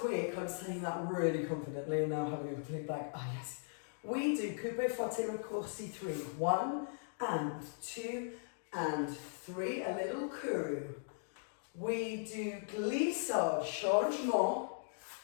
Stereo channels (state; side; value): silent; right; digital silence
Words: week, I'm saying that really confidently, and now having a complete blank. Ah, yes. We do coupe forte raccourci 3. 1 and 2 and 3, a little courroux. We do glissade, changement,